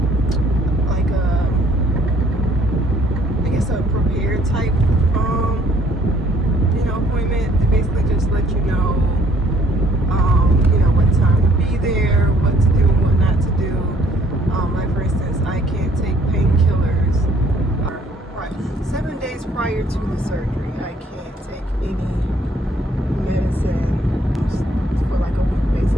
I guess a prepared type, appointment. They basically just let you know, what time to be there, what to do, what not to do. Like for instance, I can't take painkillers. Right, 7 days prior to the surgery, I can't take any medicine for like a week,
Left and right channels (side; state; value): both; normal; correlation 0.62